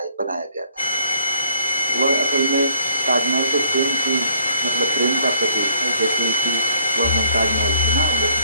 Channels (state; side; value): inverted; both; correlation -0.61